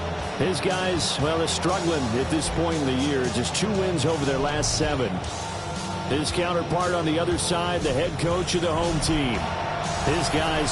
His guys, well, they're struggling at this point in the year. Just 2 wins over their last 7. His counterpart on the other side, the head coach of the home team. His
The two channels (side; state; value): both; identical; correlation 1.00